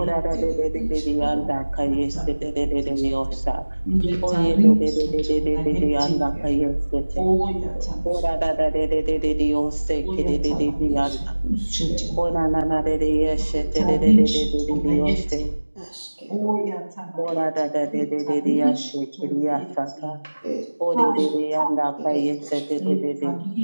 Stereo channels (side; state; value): both; inverted; correlation -1.00